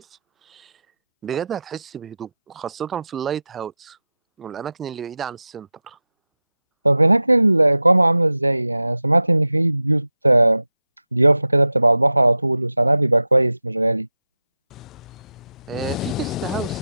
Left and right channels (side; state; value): both; inverted; correlation -0.93